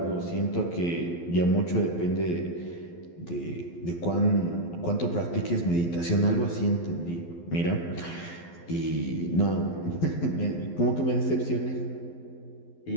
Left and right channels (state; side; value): late; right; 12 ms